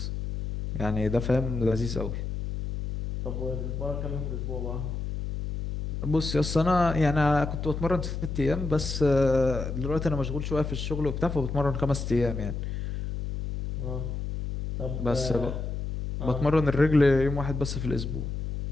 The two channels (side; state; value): left; noise; hum, 4 dB below the sound